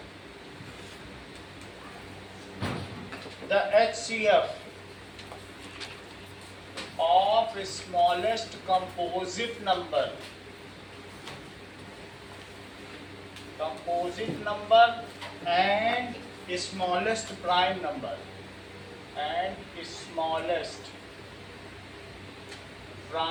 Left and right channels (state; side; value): identical; both; correlation 1.00